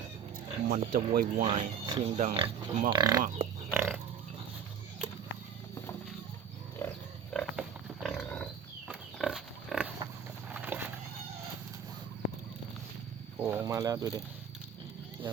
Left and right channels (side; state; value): left; quieter; 7.2 dB